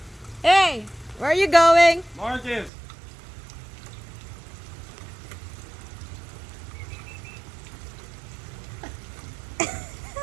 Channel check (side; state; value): left; drops out; at 2.7 s